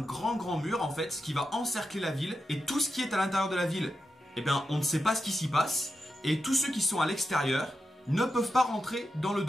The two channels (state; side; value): normal; both; correlation 0.88